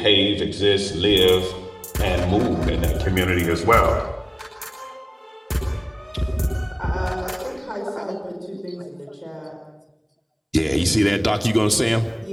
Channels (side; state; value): both; identical; correlation 1.00